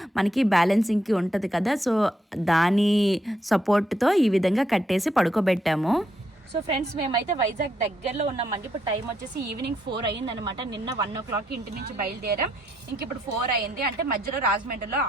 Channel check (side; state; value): both; normal; correlation 0.76